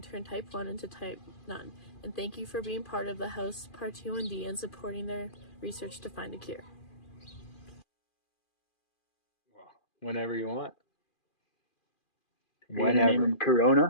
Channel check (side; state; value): right; late; 2.4 ms